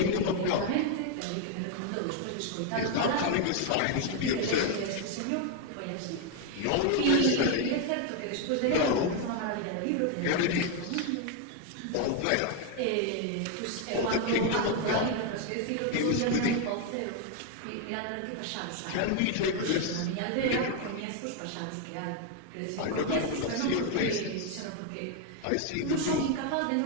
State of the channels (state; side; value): different; both; correlation 0.01